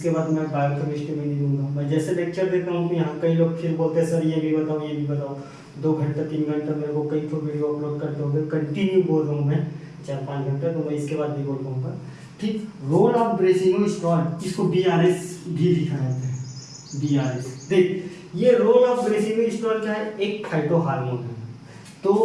बाद मैं बायोकेमिस्ट्री में नहीं दूंगा। मैं जैसे लेक्चर देता हूँ तो यहाँ कई लोग फिर बोलते हैं सर ये भी बताओ ये भी बताओ। 2 घंटा 3 घंटा मेरे को कई तो वीडियो अपलोड करते होंगे, कंटिन्यू बोल रहा हूँ मैं 4-5 घंटा, तो मैं इसके बाद भी बोल पाऊँगा। ठीक, रोल ऑफ ब्रेसिनो स्टॉल, इसको BRS भी लिखा जाता है, BRS। देख ये रोल ऑफ ब्रेसिनो स्टॉल क्या है, एक फाइटो हार्मोन है।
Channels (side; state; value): both; identical; correlation 1.00